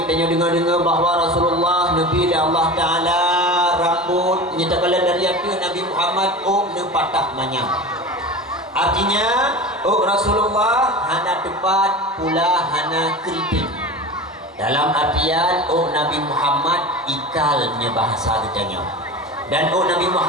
tanya dengar-dengar bahawa Rasulullah Nabi dan Allah Ta'ala rambut nyatakan dari hati Nabi Muhammad patah manyam. Artinya Rasulullah hana tepat pula hana keriting. Dalam artian Nabi Muhammad ikalnya bahasa ditanya. Dan Nabi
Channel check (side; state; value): both; normal; correlation 0.32